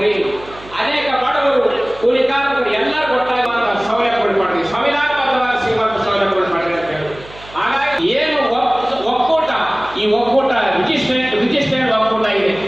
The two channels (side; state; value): right; noise; hum, 20 dB below the sound